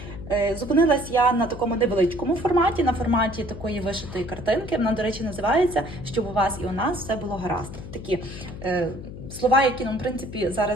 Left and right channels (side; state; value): left; noise; hum, 12 dB below the sound